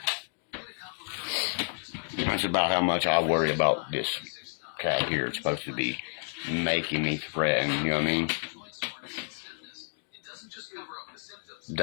That's about how much I worry about this cat here. It's supposed to be making me threaten, you know what I mean?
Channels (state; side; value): silent; right; 58 dB below the other